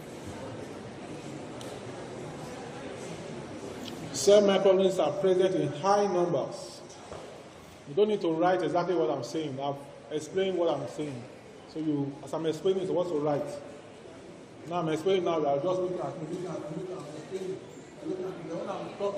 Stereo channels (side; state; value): both; identical; correlation 1.00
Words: soil microorganisms are present in high numbers. You don't need to write exactly what I'm saying. I've explained what I'm saying. So you, as I'm explaining, so what to write. Now I'm explaining now, you are just looking at me, I'm explaining. When I'm